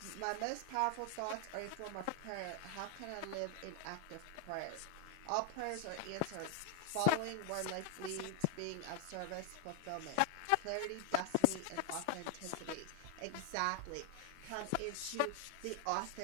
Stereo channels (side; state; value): both; different; correlation 0.00